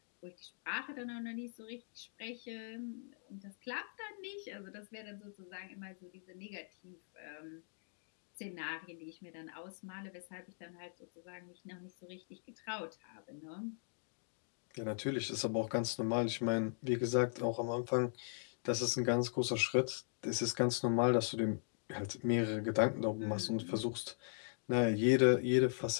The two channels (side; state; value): right; silent; digital silence